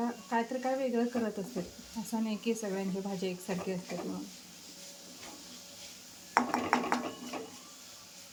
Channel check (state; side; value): identical; both; correlation 1.00